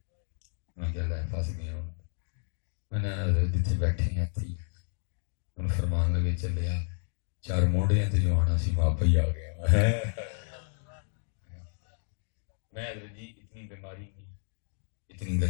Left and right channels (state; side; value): silent; right; 57 dB below the other